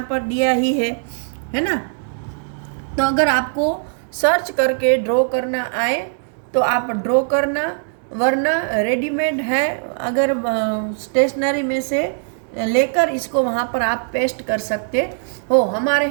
पर दिया ही है ना। तो अगर आपको सर्च करके ड्रॉ करना आए तो आप ड्रॉ करना, वरना रेडीमेड है, अगर स्टेशनरी में से लेकर इसको वहाँ पर आप पेस्ट कर सकते हो। हमारे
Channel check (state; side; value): silent; left; digital silence